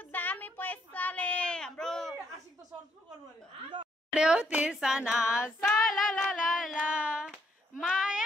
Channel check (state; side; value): normal; both; correlation 0.72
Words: दामी पैसाले हाम्रो तिर्सना साला ला ला ला